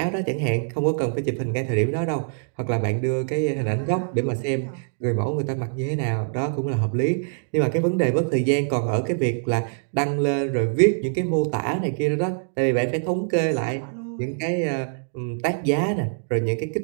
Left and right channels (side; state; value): left; silent; digital silence